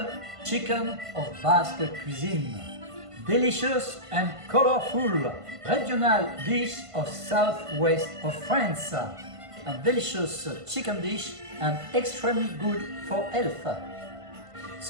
chicken of Basque cuisine. Delicious and colorful regional dish of southwest of France. A delicious chicken dish and extremely good for health.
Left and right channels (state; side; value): late; left; 1.5 ms